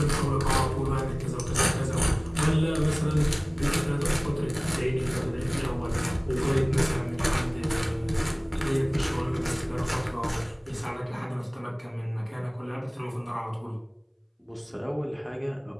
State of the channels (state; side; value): identical; both; correlation 1.00